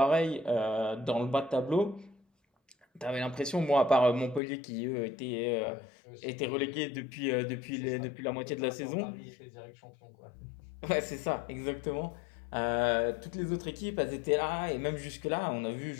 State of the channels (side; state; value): right; drops out; at 4.4 s